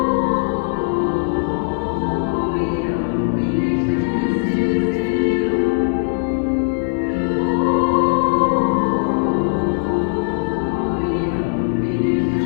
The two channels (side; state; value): right; silent; 59 dB below the other